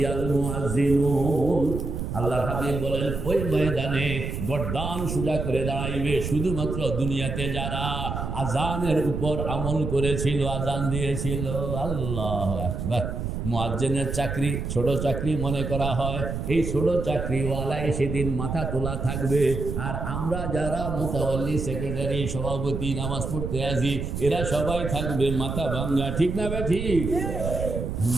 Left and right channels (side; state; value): right; noise; rumble, 4 dB below the sound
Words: আল মুয়াজ্জিনুন। আল্লাহর হাবিব বলেন ওই ময়দানে গর্দান সোজা করে দাঁড়াইবে শুধুমাত্র দুনিয়াতে যারা আযানের উপর আমল করেছিল, আযান দিয়েছিল। আল্লাহু আকবার। মুয়াজ্জিনের চাকরি ছোট চাকরি মনে করা হয়, এই ছোট চাকরিওয়ালায় সেদিন মাথা তোলা থাকবে। আর আমরা যারা মুতাওয়াল্লি, সেক্রেটারি, সভাপতি, নামাজ পড়তে আসি, এরা সবাই থাকবে মাথা ভাঙ্গা। ঠিক না বে? ঠিক।